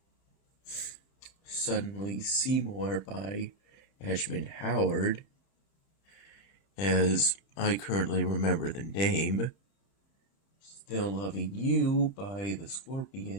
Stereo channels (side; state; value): right; late; 30 ms